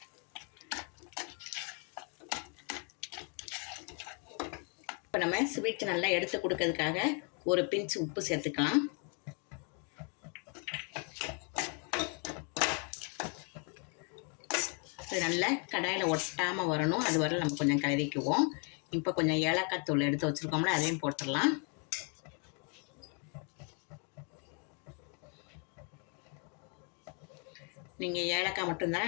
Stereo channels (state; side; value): quieter; right; 38.2 dB